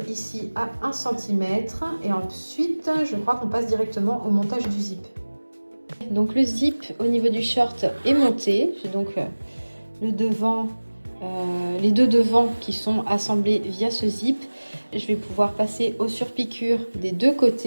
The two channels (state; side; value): inverted; both; correlation -1.00